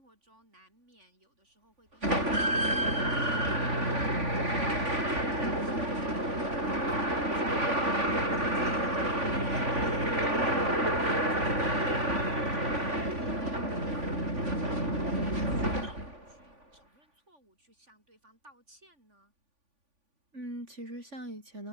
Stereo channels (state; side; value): late; left; 3.5 ms